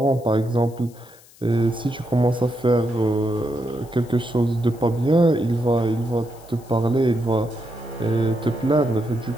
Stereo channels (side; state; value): left; noise; hiss, 25 dB below the sound